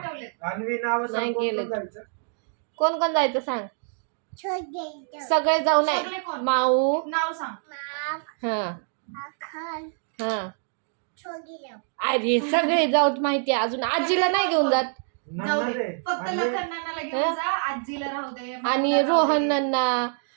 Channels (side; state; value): left; silent; 61 dB below the other